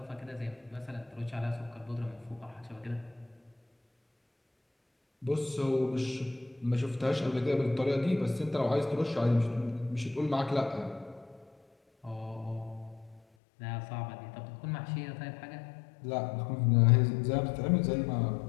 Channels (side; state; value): right; drops out; at 13.2 s